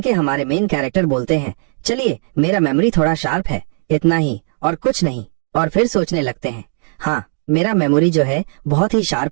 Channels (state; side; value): silent; left; 65 dB below the other